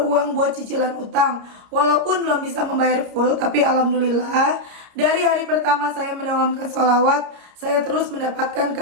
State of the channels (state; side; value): late; left; 30 ms